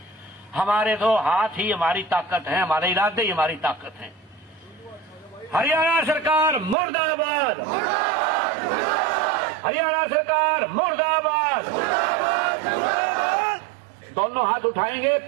हमारे तो हाथ ही हमारी ताकत है, हमारे इरादे ही हमारी ताकत है। हरियाणा सरकार मुर्दाबाद, हरियाणा सरकार मुर्दाबाद। दोनों हाथ उठाएंगे,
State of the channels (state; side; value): drops out; left; at 6.8 s